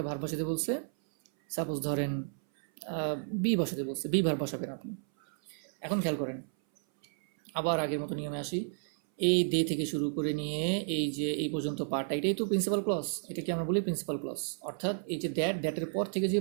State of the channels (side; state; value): left; silent; 56 dB below the other